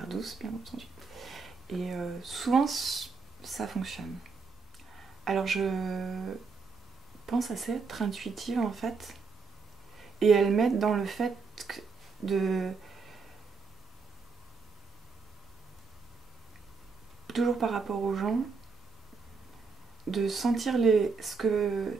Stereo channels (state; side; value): quieter; left; 4.9 dB